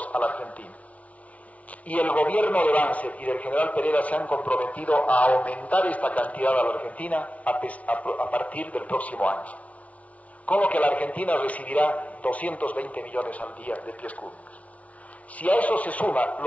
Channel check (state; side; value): late; right; 0.067 ms